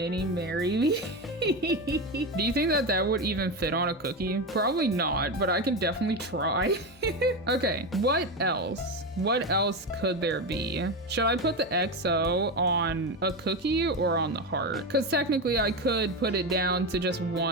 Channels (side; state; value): both; normal; correlation 0.16